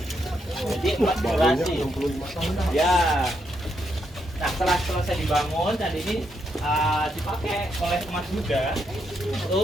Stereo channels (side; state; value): both; normal; correlation 0.79